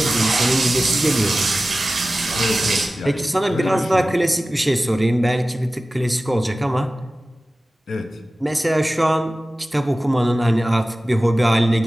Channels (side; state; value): both; normal; correlation 0.96